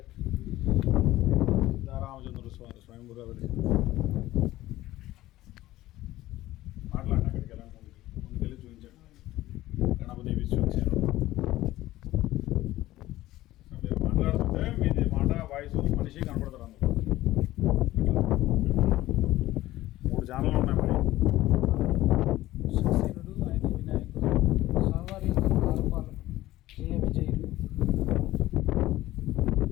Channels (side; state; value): right; quieter; 16.0 dB